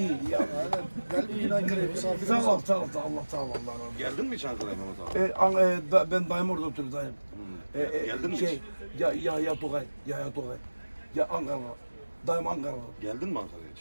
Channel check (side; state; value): both; inverted; correlation -1.00